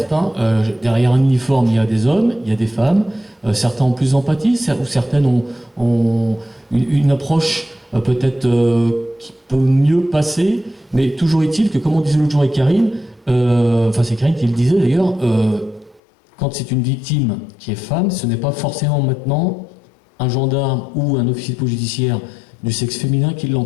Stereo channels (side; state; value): right; drops out; at 16.0 s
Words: derrière un uniforme, il y a des hommes, il y a des femmes, certains ont plus d'empathie, ou certaines ont une approche peut-être qui peut mieux passer, mais toujours est-il que, comme on disait l'autre jour avec Karine, c'est Karine qui le disait d'ailleurs, quand c'est une victime qui est femme, ce n'est pas forcément maintenant un gendarme ou un officier de police judiciaire du sexe féminin qui